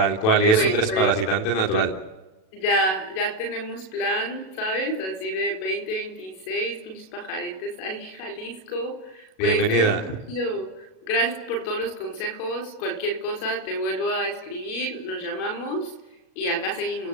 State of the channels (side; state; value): right; late; 37 ms